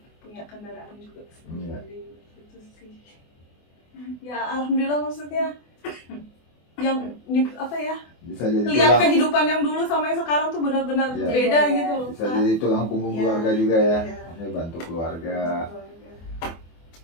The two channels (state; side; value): late; right; 24 ms